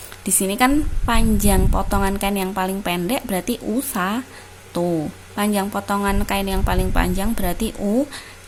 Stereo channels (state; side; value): identical; both; correlation 1.00